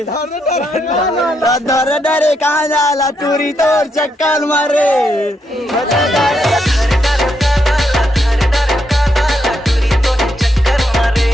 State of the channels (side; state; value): both; normal; correlation 0.79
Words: डर डरे कहाँ जाला टूरी तोर चक्कर मारे